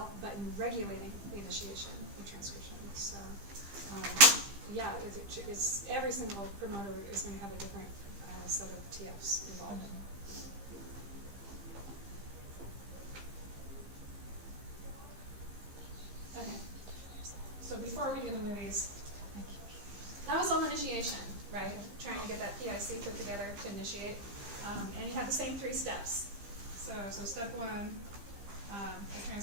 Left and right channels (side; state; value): left; late; 15 ms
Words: but in regulating the initiation and transcription. So yeah, it's every single promoter is going to have a different set of TFs involved. Okay, so before we do the movies, that was all initiation, right? Trying to get that PIC put together to initiate. And you have the same 3 steps. So step 1, the